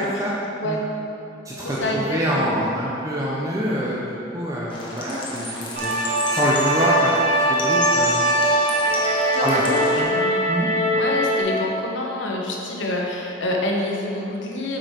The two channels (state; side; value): normal; both; correlation 0.12